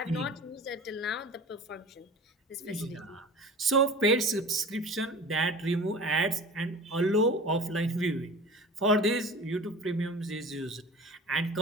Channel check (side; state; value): both; normal; correlation 0.38